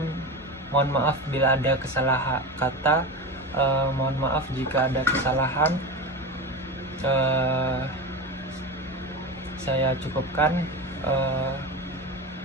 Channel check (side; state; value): both; normal; correlation 0.24